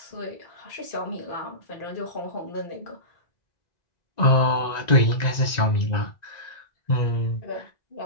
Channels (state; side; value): late; right; 1.9 ms